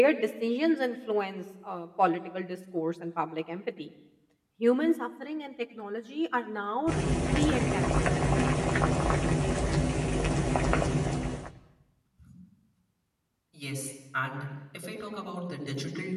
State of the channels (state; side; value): identical; both; correlation 1.00